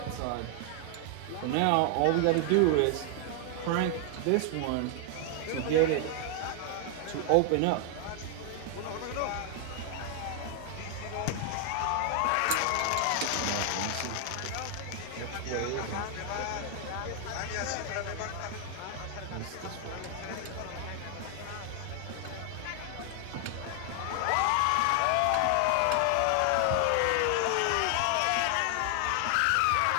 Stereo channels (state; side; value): different; both; correlation 0.00